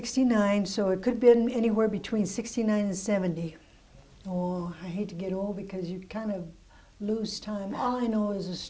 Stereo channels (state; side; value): identical; both; correlation 1.00